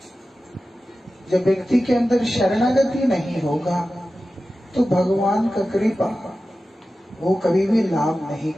जब व्यक्ति के अंदर शरणागति नहीं होगा तो भगवान का कृपा वो कभी भी लाभ नहीं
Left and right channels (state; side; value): normal; both; correlation 0.94